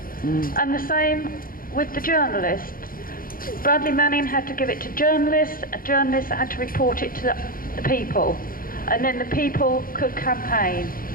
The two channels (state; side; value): late; right; 0.41 ms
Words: And the same with the journalists. Bradley Manning had to give it to journalists, and journalists had to report it to the people, and then the people could campaign.